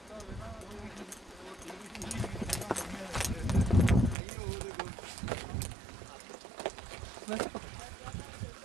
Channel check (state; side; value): drops out; left; at 4.2 s